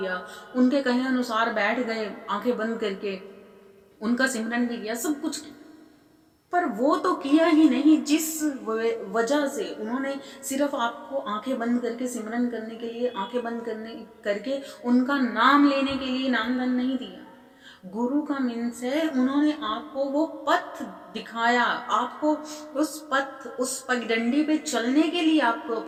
उनके कहे अनुसार बैठ गए आंखें बंद करके, उनका सिमरन भी किया, सब कुछ किया, पर वो तो किया ही नहीं जिस वजह से उन्होंने सिर्फ आपको आंखें बंद करके सिमरन करने के लिए, आंखें बंद करने करके उनका नाम लेने के लिए नामदान नहीं दिया। गुरु का मीन्स है उन्होंने आपको वो पथ दिखाया, आपको उस पथ, उस पगडंडी पे चलने के लिए आपको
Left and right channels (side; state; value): both; identical; correlation 1.00